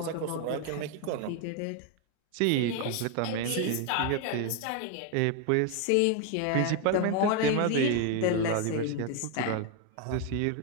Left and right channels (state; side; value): different; both; correlation 0.01